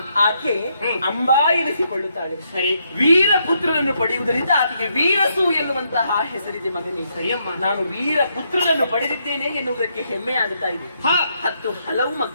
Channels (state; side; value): inverted; both; correlation -0.76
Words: ಆಕೆ ಅಂಬಾ ಎನಿಸಿಕೊಳ್ಳುತ್ತಾಳೆ. ಸರಿ. ವೀರ ಪುತ್ರನನ್ನು ಪಡೆಯುವುದರಿಂದ ಆಕೆಗೆ ವೀರಸು ಎನ್ನುವಂತಹ ಹೆಸರಿದೆ ಮಗನೇ. ಸರಿಯಮ್ಮ. ನಾನು ವೀರ ಪುತ್ರನನ್ನು ಪಡೆದಿದ್ದೇನೆ ಎನ್ನುವುದಕ್ಕೆ ಹೆಮ್ಮೆ ಆಗುತ್ತಾ ಇದೆ. ಹಾ, 10 ಹಲವು